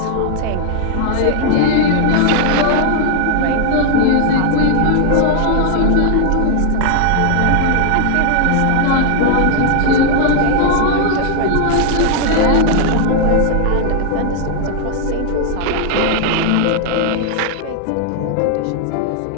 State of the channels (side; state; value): both; different; correlation 0.00